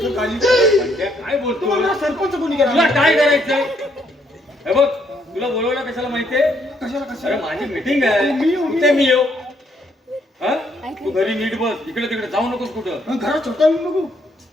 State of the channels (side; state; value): both; normal; correlation 0.71